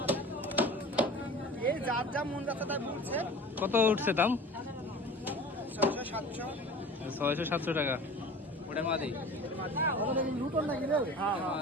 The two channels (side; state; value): both; normal; correlation 0.39